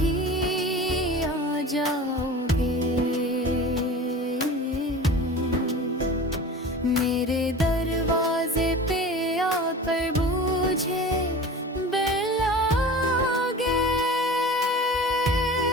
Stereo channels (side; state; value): both; normal; correlation 0.36